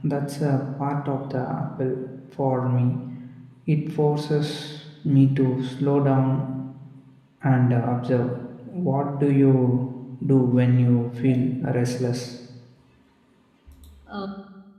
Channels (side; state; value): both; identical; correlation 1.00